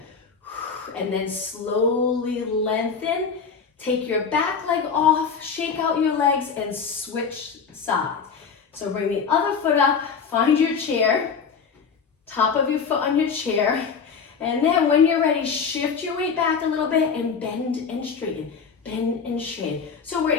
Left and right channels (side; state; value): right; quieter; 5.9 dB